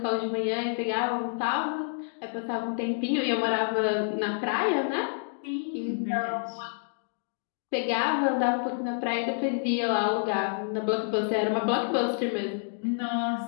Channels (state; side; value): silent; right; digital silence